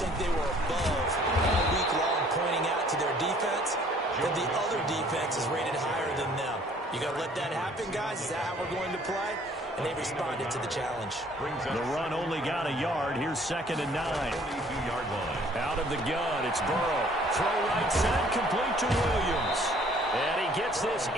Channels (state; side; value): normal; both; correlation 0.57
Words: they were above all week long pointing out to their defense that the other defense is rated higher than them. You got to let that happen, guys. Is that how we're going to play? And they responded to the challenge. The run only got a yard. Here's 2nd and 9. 22-yard line. Out of the gun, it's Burrow. Throw right side, complete to Williams. And he gets this